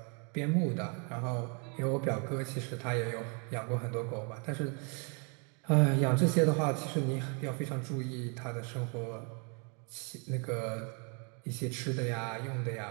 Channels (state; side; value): quieter; left; 36.3 dB